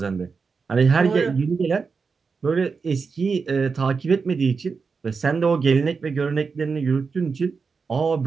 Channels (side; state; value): left; quieter; 5.1 dB